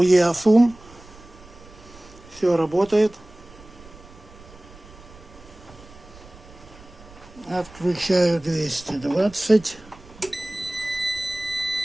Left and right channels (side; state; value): right; noise; rumble, 21 dB below the sound